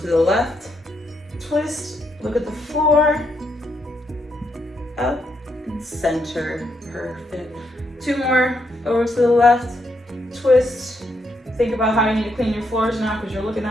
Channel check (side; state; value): both; normal; correlation 0.77